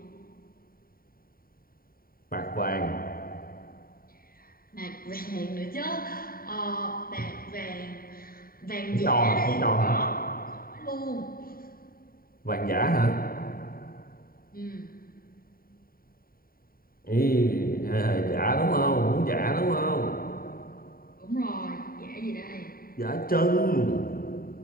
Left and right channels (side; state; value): right; late; 0.43 ms